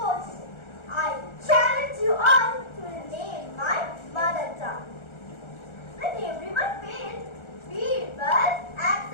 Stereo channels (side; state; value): right; late; 1.4 ms